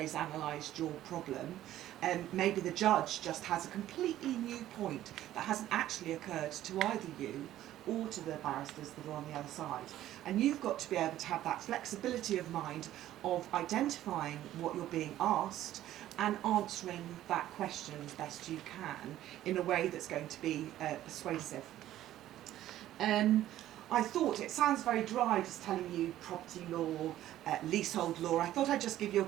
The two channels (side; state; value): left; quieter; 13.3 dB